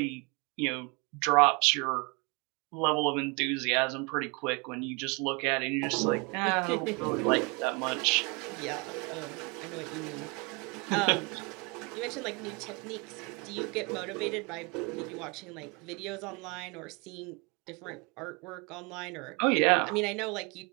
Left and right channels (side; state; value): left; quieter; 30.3 dB